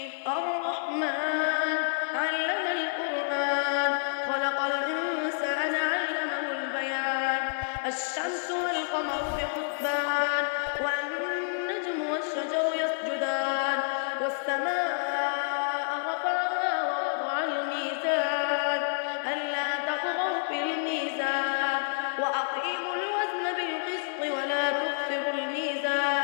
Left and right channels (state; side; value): silent; right; digital silence